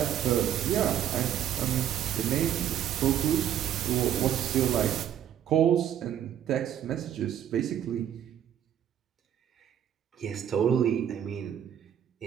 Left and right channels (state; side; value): quieter; left; 10.2 dB